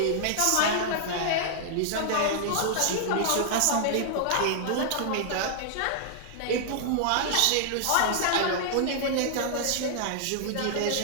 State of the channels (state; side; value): different; both; correlation -0.01